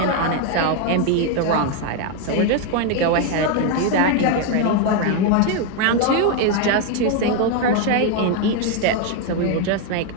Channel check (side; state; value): both; different; correlation 0.01